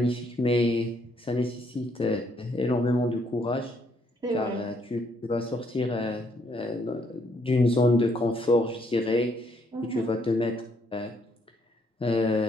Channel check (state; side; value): normal; both; correlation 0.70